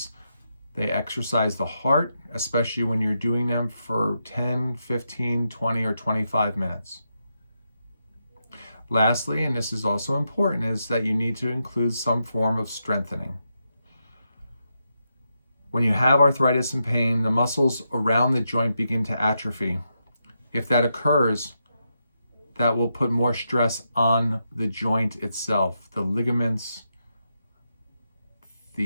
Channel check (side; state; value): both; inverted; correlation -0.84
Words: They exercise the heart, especially when you're doing them for 10, 15, 20, or 25 minutes. Lastly, and this is also important, is that you need to include some form of strengthening. When you have arthritis and pain, the muscles around the joint begin to atrophy. If that occurs, that will put more stress on the joint itself, the ligaments,